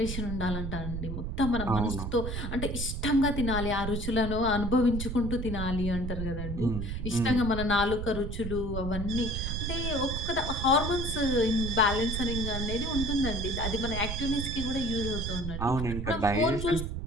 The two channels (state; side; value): noise; right; rumble, 4 dB below the sound